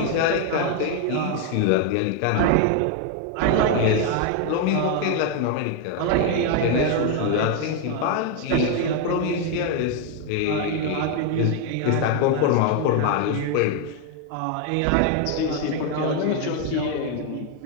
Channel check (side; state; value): both; different; correlation 0.01